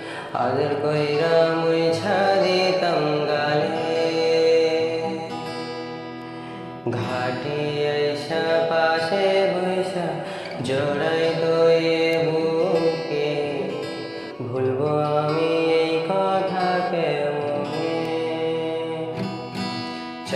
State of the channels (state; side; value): identical; both; correlation 1.00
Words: আদর কইরা মুইছা দিতাম গালে। ঘাটে আইসা পাশে বইসা জড়াই তোয়ে বুকে, ভুলবো আমি এই কথা কেমনে।